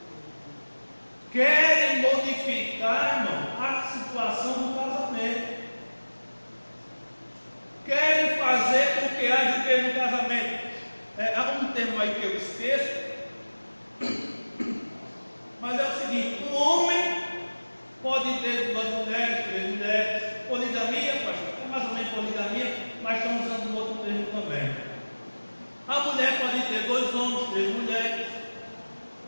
Querem modificar, irmão, a situação do casamento. Querem fazer com que haja o que no casamento. Há um termo aí que eu esqueço, mas é o seguinte: um homem pode ter 2 mulheres, 3 mulheres, poligamia, pastor, é mais ou menos poligamia, mas estamos usando um outro termo também. A mulher pode ter 2 homens, 3 mulheres.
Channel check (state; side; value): inverted; both; correlation -1.00